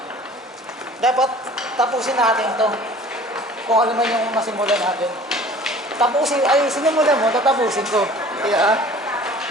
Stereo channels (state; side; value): normal; both; correlation 0.47